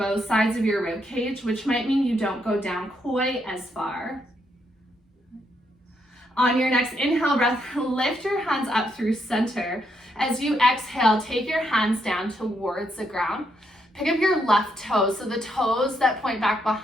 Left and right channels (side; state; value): both; normal; correlation 0.77